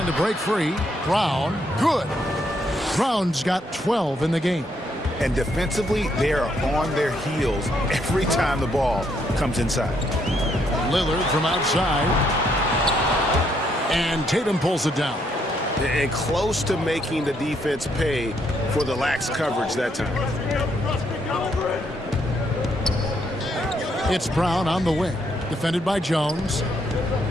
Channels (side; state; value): both; normal; correlation 0.73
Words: to break free. Brown. Good. Brown's got 12 in the game. And defensively, they are on their heels every time the ball comes inside. Lillard from outside. And Tatum pulls it down. And close to making the defense pay for the lax coverage that time. It's Brown on the wing. Defended by Jones.